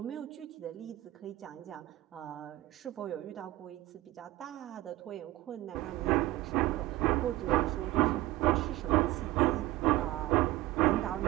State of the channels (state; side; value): quieter; left; 17.3 dB